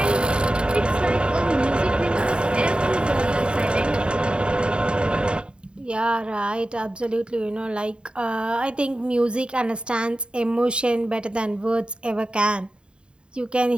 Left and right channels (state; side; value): late; left; 0.052 ms